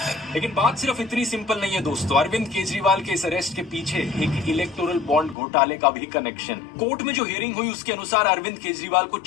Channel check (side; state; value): right; drops out; at 5.4 s